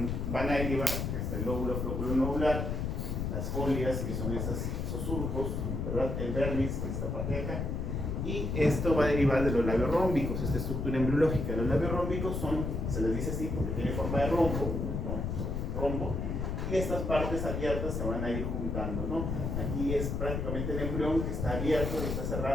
van a derivar hasta el lóbulo flóculo nodular, las folias, que son esos surcos, ¿verdad? El vernix, que es esta parte de acá, y esto va a derivar de los labios rómbicos, esta estructura embriológica. Los labios rómbicos se les dice así porque tiene forma de rombo, ¿no? Rombo, y estas partes abiertas se van a ir juntando, ¿no? Aquí es prácticamente el embrión que está abierto, que está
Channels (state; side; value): noise; left; rumble, 2 dB below the sound